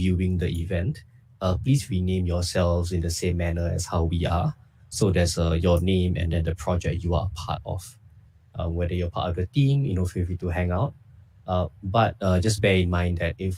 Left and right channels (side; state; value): both; identical; correlation 1.00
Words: the event, please rename yourselves in the same manner as how we are. So there's your name and then the project you are a part of. Whether you're part of the team, feel free to hang out. But just bear in mind that